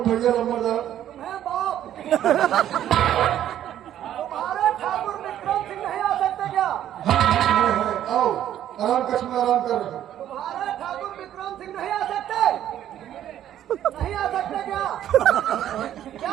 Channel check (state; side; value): quieter; left; 11.4 dB